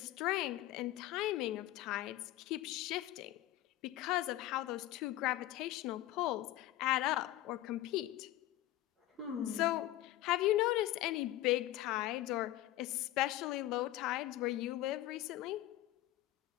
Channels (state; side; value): quieter; right; 15.1 dB